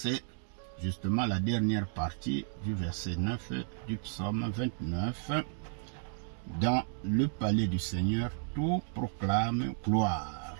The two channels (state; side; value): silent; left; digital silence